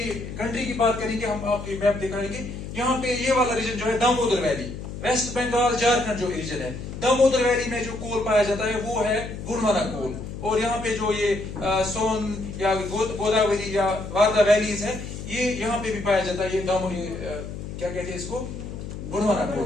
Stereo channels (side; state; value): left; noise; hum, 9 dB below the sound